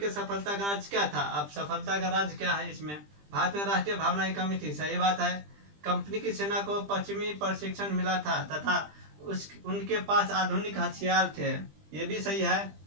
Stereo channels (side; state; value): left; late; 20 ms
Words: सफलता का राज क्या था? अब सफलता का राज क्या है इसमें? भारत में राष्ट्रीय भावना की कमी थी, सही बात है। कंपनी की सेना को पश्चिमी प्रशिक्षण मिला था तथा उनके पास आधुनिक हथियार थे, ये भी सही है।